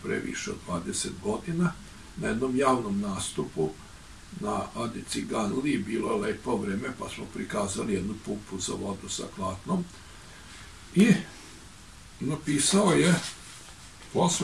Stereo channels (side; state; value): both; identical; correlation 1.00